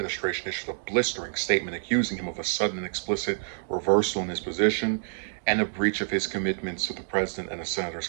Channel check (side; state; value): left; silent; digital silence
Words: issued a blistering statement accusing him of a sudden and explicit reversal in his position and a breach of his commitments to the president and the senator's